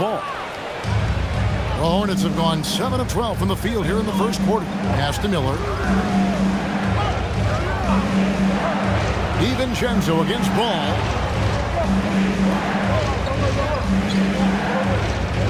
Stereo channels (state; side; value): identical; both; correlation 1.00